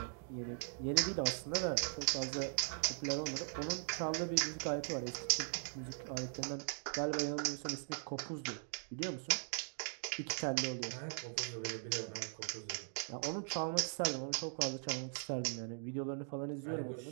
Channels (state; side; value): silent; left; 51 dB below the other